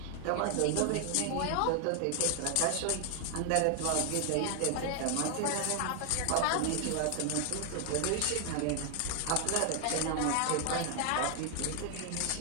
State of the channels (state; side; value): different; both; correlation 0.00